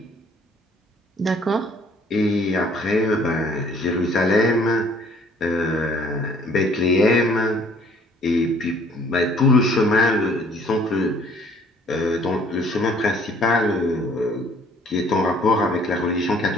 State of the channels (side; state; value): both; normal; correlation 0.58